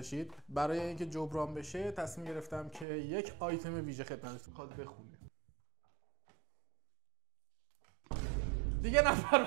برای اینکه جبران بشه تصمیم گرفتم که یک آیتم ویژه خدمتتون میخواد بخونه. دیگه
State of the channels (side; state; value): left; drops out; at 2.9 s